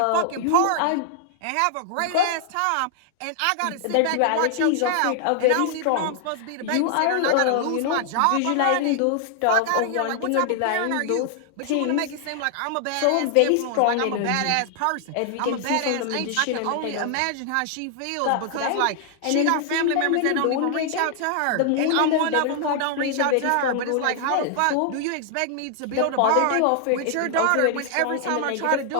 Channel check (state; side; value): different; both; correlation 0.00